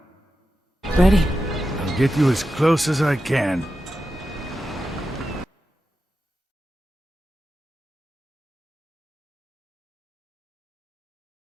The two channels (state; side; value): normal; both; correlation 0.91